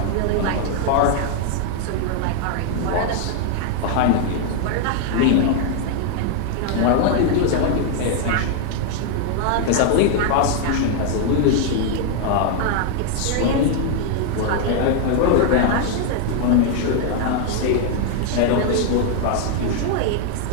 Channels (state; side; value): different; both; correlation 0.00